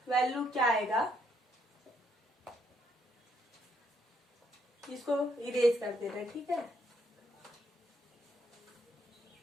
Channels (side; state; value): both; normal; correlation 0.73